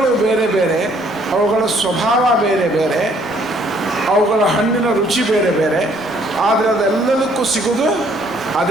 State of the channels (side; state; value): right; noise; rumble, 29 dB below the sound